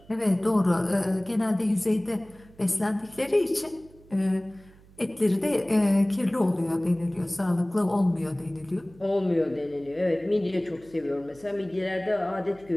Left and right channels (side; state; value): right; noise; hum, 25 dB below the sound